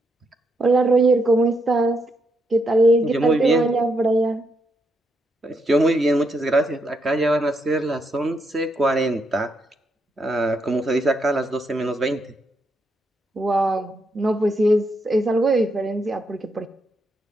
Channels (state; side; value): normal; both; correlation 0.79